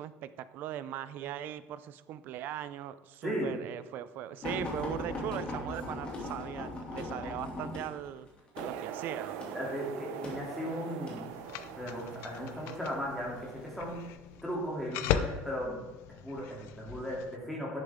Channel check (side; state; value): both; normal; correlation 0.43